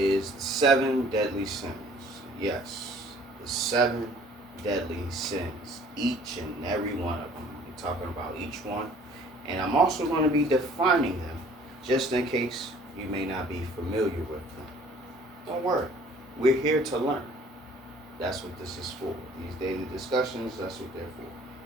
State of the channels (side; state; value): both; normal; correlation 0.54